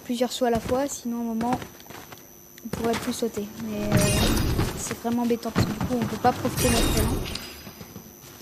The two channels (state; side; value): identical; both; correlation 1.00